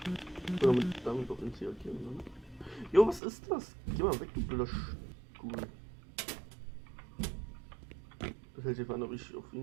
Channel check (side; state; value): left; drops out; at 3.2 s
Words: Oder damit auf den C markieren, ne? Jo, was ist das? Geh mal weg, du blöder Stuhl. Das hält sich an, ob ich auf